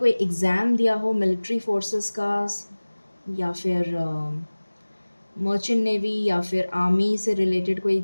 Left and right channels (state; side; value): inverted; both; correlation -1.00